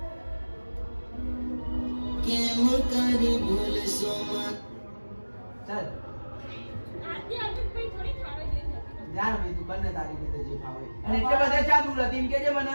કેમ કરી ભૂલ સોમન ચાલ જાણ ભાઈ તું બંને તારી રીતે જે ફાવે અને એટલે બધા ચા દૂર હતી એમ કેજે મને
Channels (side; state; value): both; inverted; correlation -1.00